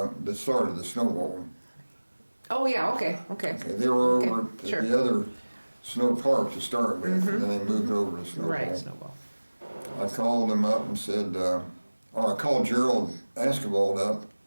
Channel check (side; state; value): both; inverted; correlation -1.00